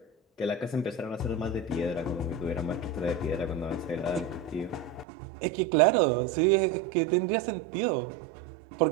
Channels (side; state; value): left; drops out; at 5.1 s